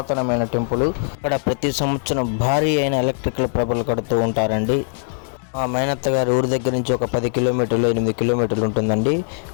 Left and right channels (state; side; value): silent; right; 65 dB below the other